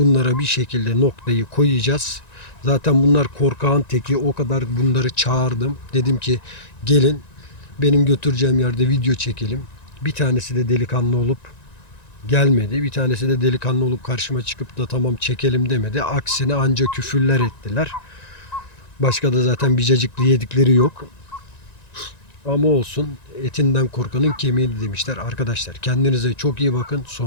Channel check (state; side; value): late; right; 1.9 ms